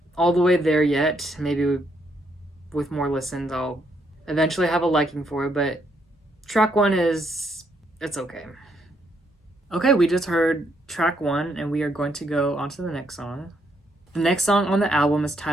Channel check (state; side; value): normal; both; correlation 0.74